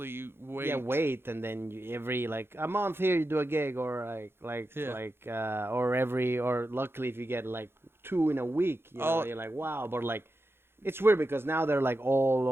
wait. Yeah, wait, and then every like a month here you do a gig, or or luckily if you get like 2 in a week, you know, you're like, wow. But like, it's weird because now they're like all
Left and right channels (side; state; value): left; late; 0.11 ms